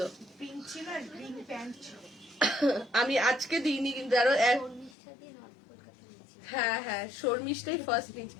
আমি আজকে দিইনি কিন্তু আরো হ্যাঁ শর্মিষ্ঠাই ফার্স্ট নিয়েছি,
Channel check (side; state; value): right; drops out; at 5.0 s